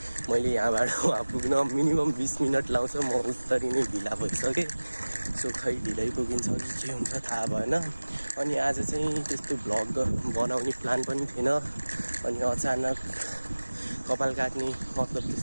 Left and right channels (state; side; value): inverted; both; correlation -1.00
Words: मैले यहाँबाट वहाँ पुग्न मिनिमम 20 मिनेट लाउँछ। म उत्तरी नै ढिला भइसके। सो खै ढिलै पुगिन्छ कि के हुन्छ थाहा भएन। अनि आज चाहिँ त्यस्तो भ्लग बनाउने प्लान पनि थिएन। अनि अचानक कपाल काट्ने मतलब